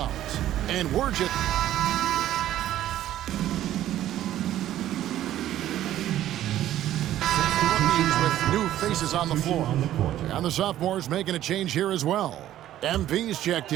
And we're just... with new faces on the floor. And the sophomores making a change here as well. MP's checked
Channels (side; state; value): left; quieter; 12.8 dB